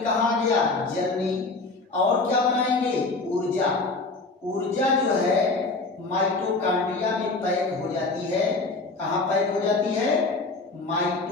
आ गया? जल में। और क्या बनाएंगे? ऊर्जा। ऊर्जा जो है माइटोकॉन्ड्रिया में पैक हो जाती है। कहाँ पैक हो जाती है?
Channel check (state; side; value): quieter; right; 3.6 dB